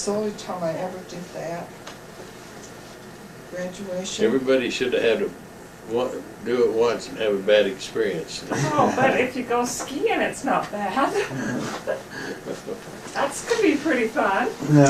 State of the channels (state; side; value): identical; both; correlation 1.00